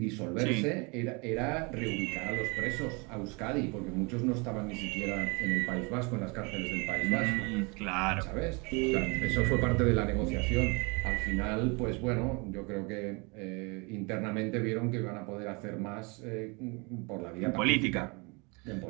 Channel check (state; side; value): quieter; left; 30.0 dB